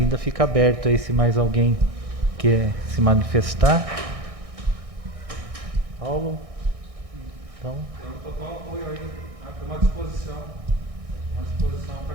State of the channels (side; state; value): left; late; 1.6 ms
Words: fica aberto aí se mais alguém quer se manifestar. Paulo? Então. Eu estou com apoio aí, uma disposição